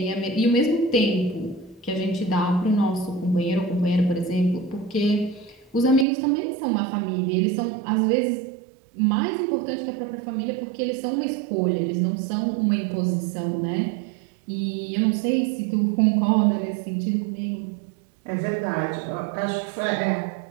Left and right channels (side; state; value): left; drops out; at 6.1 s